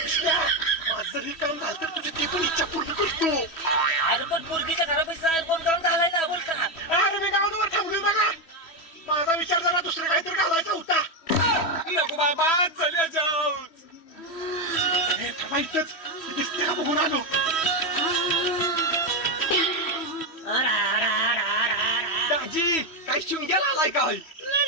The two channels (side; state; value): right; late; 3.1 ms